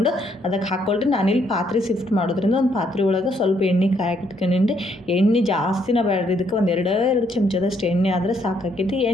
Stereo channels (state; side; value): normal; both; correlation 0.71